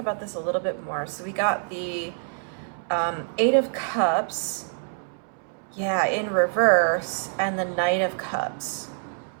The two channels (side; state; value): left; silent; 61 dB below the other